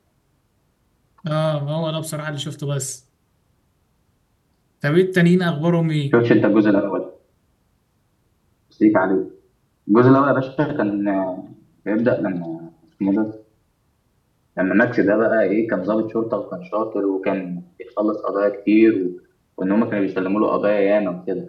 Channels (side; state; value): both; identical; correlation 1.00